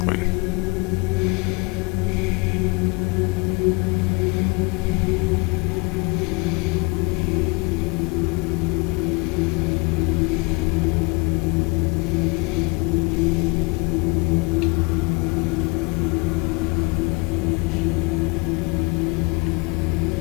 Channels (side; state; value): right; quieter; 28.4 dB